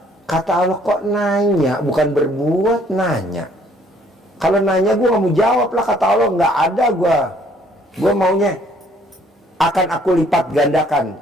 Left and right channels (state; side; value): normal; both; correlation 0.62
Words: Kata Allah kok nanya, bukan berbuat, nanya. Kalau nanya gue gak mau jawab lah, kata Allah nggak ada gue. Gue maunya akan aku lipat gandakan,